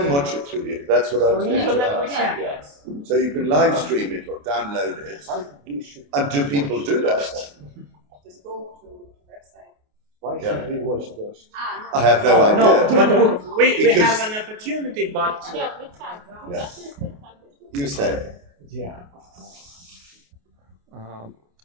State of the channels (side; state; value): left; late; 28 ms